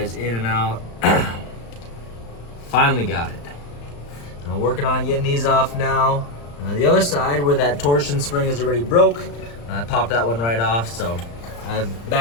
in and out. Finally got it. I'm working on getting these off now. The other side, where that torsion spring is already broke, I popped that one right off, so I've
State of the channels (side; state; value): right; late; 35 ms